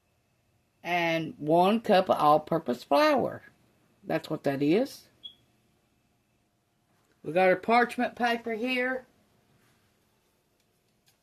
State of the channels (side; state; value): both; identical; correlation 1.00